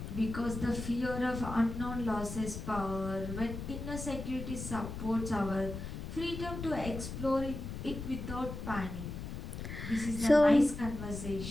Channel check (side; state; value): left; noise; rumble, 7 dB below the sound